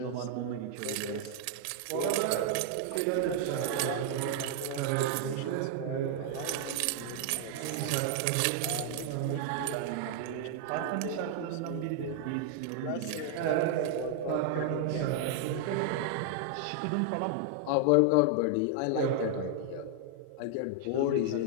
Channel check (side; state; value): both; different; correlation 0.00